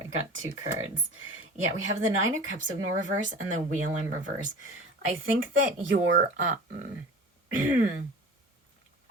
I got two cards. Yeah, we have the Nine of Cups in reverse and the Wheel in reverse. I think that you're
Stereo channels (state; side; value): normal; both; correlation 0.38